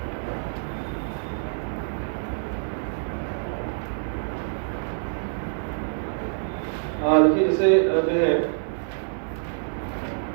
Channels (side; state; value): left; silent; 61 dB below the other